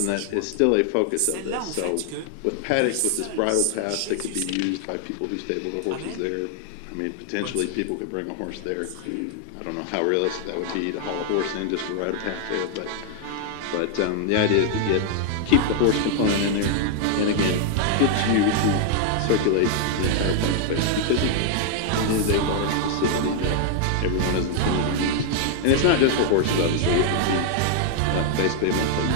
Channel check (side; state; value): both; different; correlation 0.00